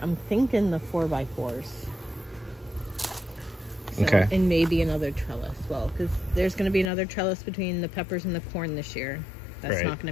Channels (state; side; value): drops out; right; at 6.9 s